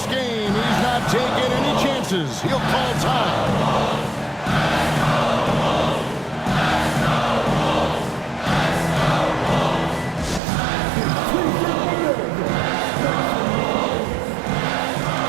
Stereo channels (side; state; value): left; drops out; at 10.4 s